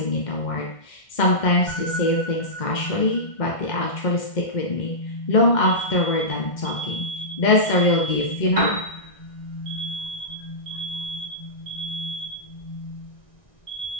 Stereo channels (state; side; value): late; right; 1.6 ms